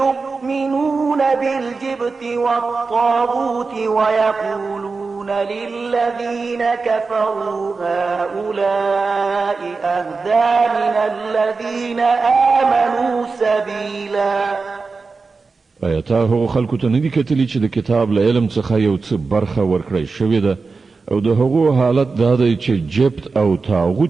بالجبت والطاغوت ويقولون للذين كفروا هؤلاء أهدى من الذين آمنوا سبيلا. آیاته هغو خلکو ته ندي کتلی چې د کتاب له علم څخه یو څه برخه ورکړی شوې ده او د هغو حالت دا دی چې جبت او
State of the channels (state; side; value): quieter; left; 4.3 dB